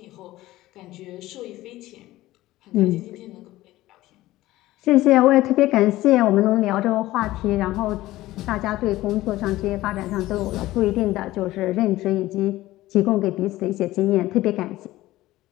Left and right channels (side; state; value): right; quieter; 16.7 dB